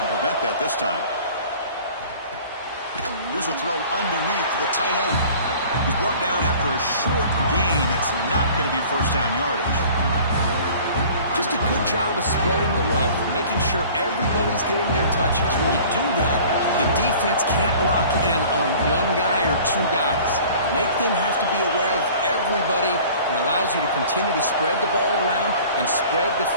prevent that this time. Here's a throw underneath to the tight end. He's brought down after a short gain that's not going to be first down yardage. Just a good job of spreading the wealth, making sure everybody's getting their touches. When you do that, the defense can't lock in on one guy or two guys. Make them have to be aware of everybody, and allows you to continue to spread the ball around and spread the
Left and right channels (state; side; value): inverted; both; correlation -0.47